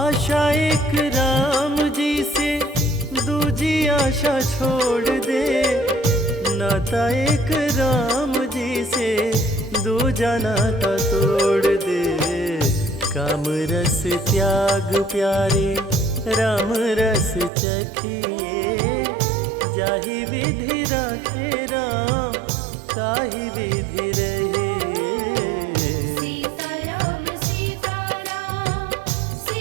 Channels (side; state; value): left; drops out; at 17.5 s